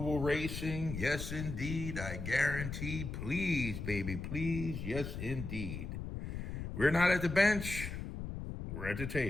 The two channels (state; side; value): noise; left; rumble, 6 dB below the sound